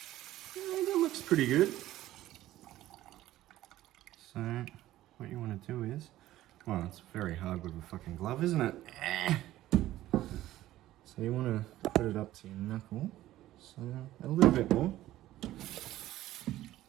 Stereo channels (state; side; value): quieter; left; 14.8 dB